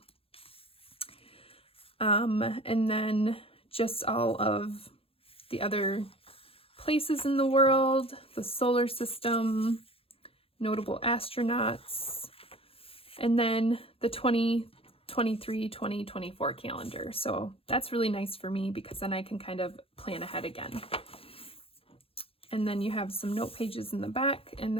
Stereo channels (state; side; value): late; right; 0.27 ms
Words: And then just all of the other places in the world, the solar system, notable astronauts, and then the 2023-2024 calendar. So that's really nice for me because then I can kind of plan ahead again. And then you have some note pages in the back, and